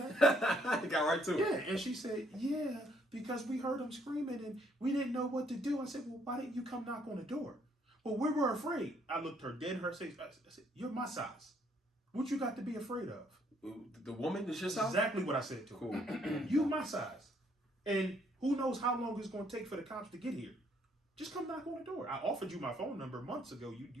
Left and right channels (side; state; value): both; normal; correlation 0.68